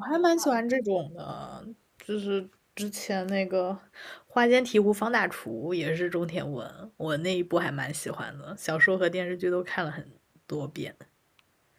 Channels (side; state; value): both; identical; correlation 1.00